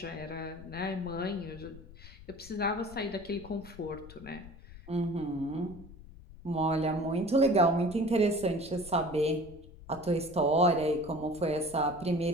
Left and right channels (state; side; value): noise; left; rumble, 18 dB below the sound